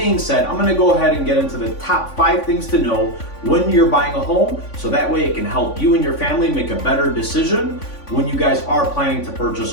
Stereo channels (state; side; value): late; right; 3.5 ms